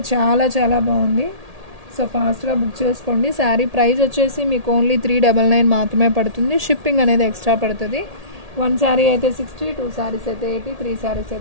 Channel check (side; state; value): left; late; 1.8 ms